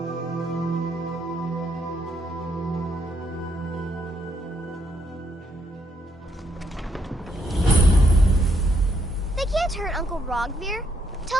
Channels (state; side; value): normal; both; correlation 0.74